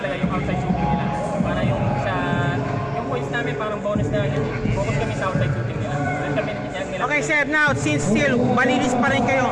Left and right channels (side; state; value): both; identical; correlation 1.00